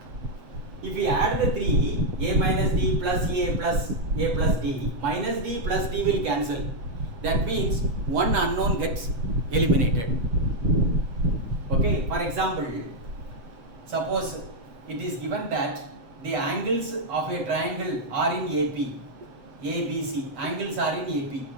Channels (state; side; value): late; left; 8.1 ms